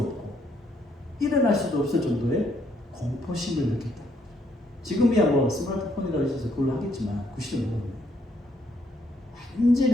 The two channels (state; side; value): normal; both; correlation 0.71